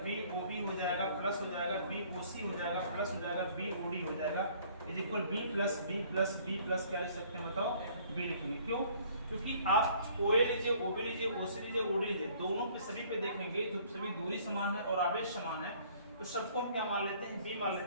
BOB हो जाएगा प्लस हो जाएगा, BOC हो जाएगा प्लस हो जाएगा, BOD हो जाएगा। Is equal B plus B plus B plus क्या लिख सकते हैं बताओ, बी लिखेंगे। क्यों? क्योंकि आप ओ ए लीजिए, ओ बी लीजिए, ओ सी लीजिए, ओ डी लीजिए, दोनों पे सभी पे देखेंगे जो सभी दूरी समान है और आवेश समान है, तो सबको हम क्या मान लेते हैं, बी मान लेते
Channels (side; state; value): both; inverted; correlation -0.57